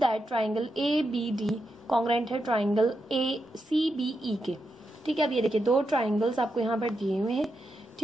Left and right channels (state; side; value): normal; both; correlation 0.85